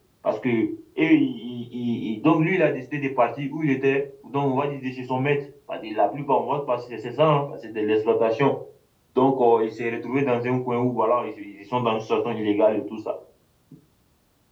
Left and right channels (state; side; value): identical; both; correlation 1.00